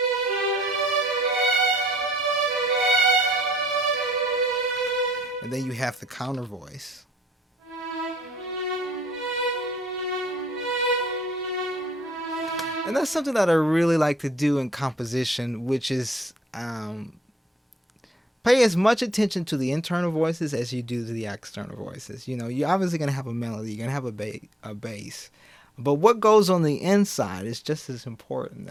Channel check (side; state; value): both; normal; correlation 0.67